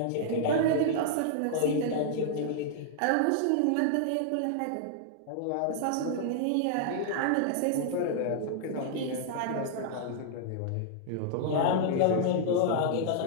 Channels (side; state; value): both; different; correlation -0.01